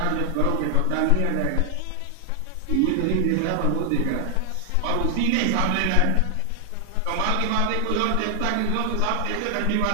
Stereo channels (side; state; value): both; different; correlation 0.00